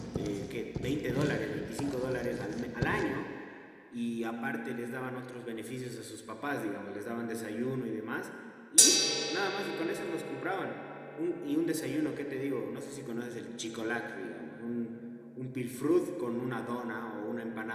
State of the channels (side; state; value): both; identical; correlation 1.00